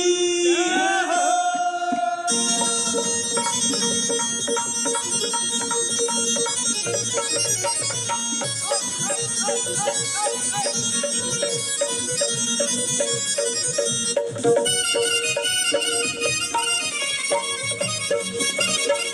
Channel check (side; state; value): both; identical; correlation 1.00